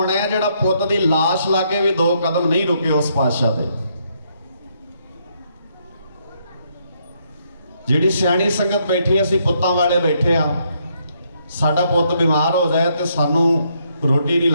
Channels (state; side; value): inverted; both; correlation -0.73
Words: ਹੈ ਜਿਹੜਾ ਪੁੱਤ ਦੀ ਲਾਸ਼ ਲਾਗੇ ਵੀ 2 ਕਦਮ ਨਹੀਂ ਰੁਕੇ ਉਸ ਪਾਤਸ਼ਾਹ ਦੇ। ਜਿਹੜੀ ਸਿਆਣੀ ਸੰਗਤ ਬੈਠੀ, ਅਸੀਂ ਪੁੱਤਾਂ ਵਾਲੇ ਬੈਠੇ ਆ, ਸਾਡਾ ਪੁੱਤ ਬਿਮਾਰ ਹੋ ਜਾਏ ਤੇ ਸਾਨੂੰ ਰੋਟੀ ਨਹੀਂ